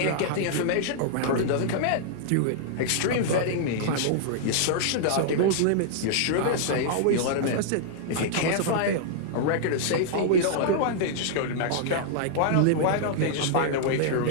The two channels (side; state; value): both; different; correlation -0.01